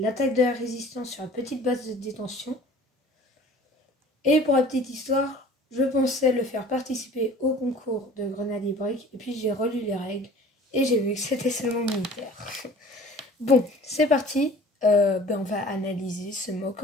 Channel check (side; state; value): both; normal; correlation 0.47